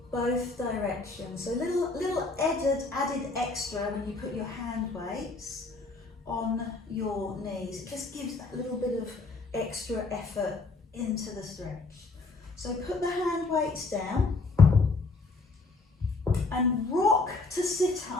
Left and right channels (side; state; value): right; quieter; 3.6 dB